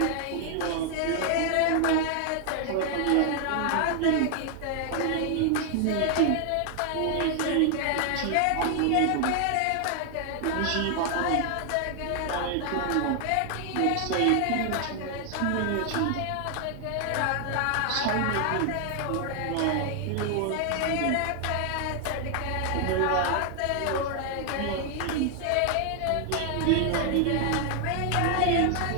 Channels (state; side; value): different; both; correlation 0.00